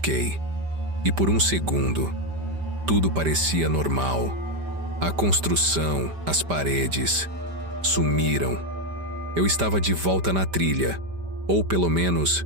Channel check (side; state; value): left; late; 5.1 ms